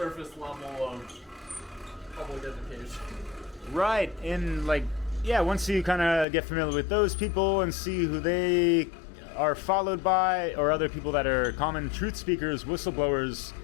level of public education. Right, and like, yeah, once you kind of get familiar with those people and see who they are followed by, or other people that are common truth speakers, whistleblowers,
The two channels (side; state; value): right; drops out; at 6.2 s